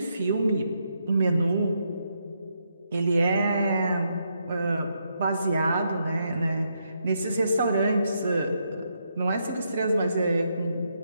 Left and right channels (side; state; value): both; inverted; correlation -0.79